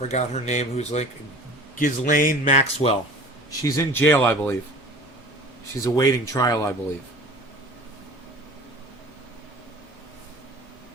her name, who's like Ghislaine Maxwell? She's in jail, I believe. She's awaiting trial, I believe.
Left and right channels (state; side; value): normal; both; correlation 0.42